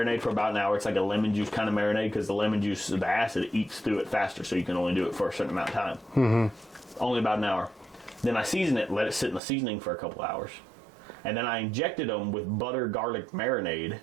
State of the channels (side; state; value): left; drops out; at 9.4 s